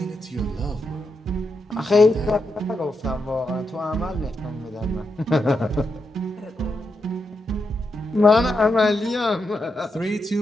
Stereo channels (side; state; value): both; normal; correlation 0.84